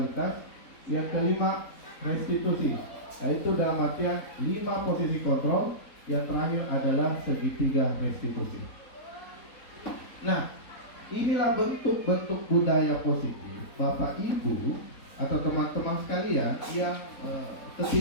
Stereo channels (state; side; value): late; right; 3.9 ms